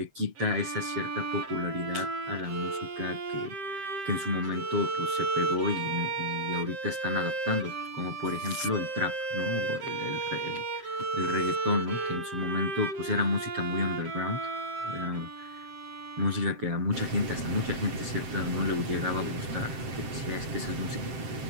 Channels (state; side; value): late; left; 7.6 ms